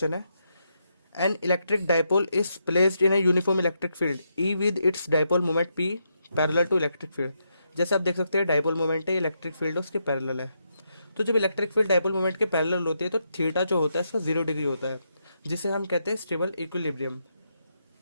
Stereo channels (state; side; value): inverted; both; correlation -0.81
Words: है, an electric dipole is placed in a uniform electric field E with its dipole moment P parallel to electric field. जैसे आप देख सकते हैं डाइपोल मोमेंट है, इलेक्ट्रिक फील्ड उसके पैरेलल है। तो जब इलेक्ट्रिक फील्ड डाइपोल मोमेंट के पैरेलल होती है तो थीटा जो होता है इसका 0 डिग्री होता है, जिसे हम कहते हैं स्टेबल इक्विलिब्रियम।